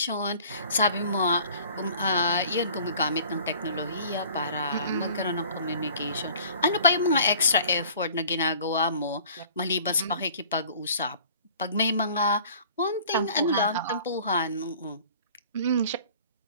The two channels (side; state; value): both; inverted; correlation -0.50